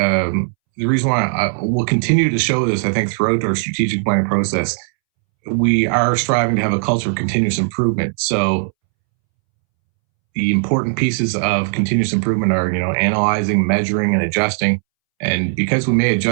the reason why we'll continue to show this, I think, throughout our strategic planning process. We are striving to have a culture of continuous improvement. So the important pieces of continuous improvement are, analyzing, measuring, and adjusting. And because we may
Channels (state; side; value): silent; left; 67 dB below the other